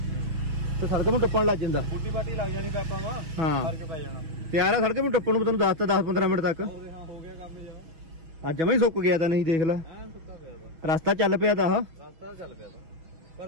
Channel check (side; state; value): left; late; 6.2 ms